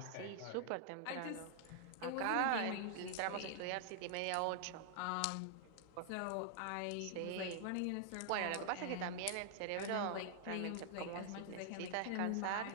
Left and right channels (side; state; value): both; different; correlation -0.01